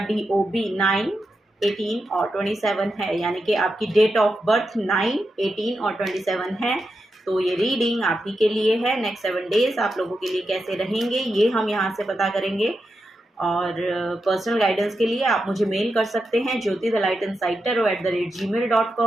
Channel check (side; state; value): both; normal; correlation 0.87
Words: DOB 9, 18 और 27 है, यानी कि आपकी डेट ऑफ बर्थ 9, 18 और 27 है, तो ये रीडिंग आप ही के लिए है। नेक्स्ट 7 डेज आप लोगों के लिए कैसे रहेंगे ये हम यहाँ से पता करेंगे। और पर्सनल गाइडेंस के लिए आप मुझे मेल कर सकते हैं Jyoti the light inside tarot